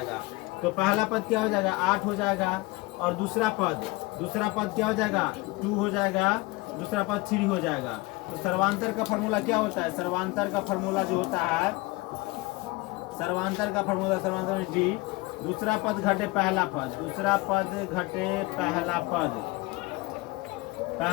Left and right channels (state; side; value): quieter; right; 23.2 dB